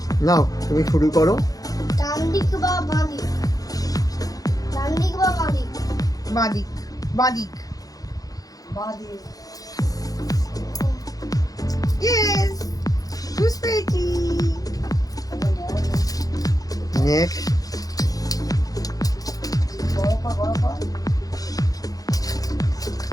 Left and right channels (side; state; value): right; late; 0.18 ms